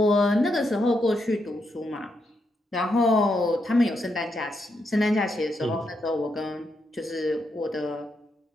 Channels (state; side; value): normal; both; correlation 0.81